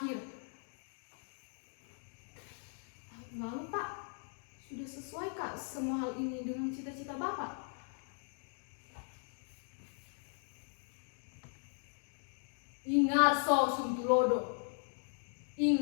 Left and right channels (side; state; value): right; silent; 52 dB below the other